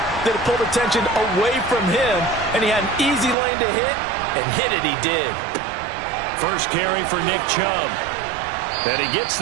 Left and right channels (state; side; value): drops out; left; at 3.4 s